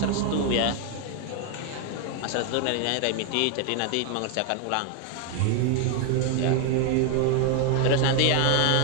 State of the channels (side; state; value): both; different; correlation 0.00